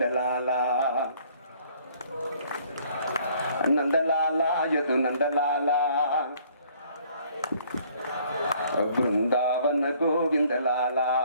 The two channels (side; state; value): both; inverted; correlation -0.60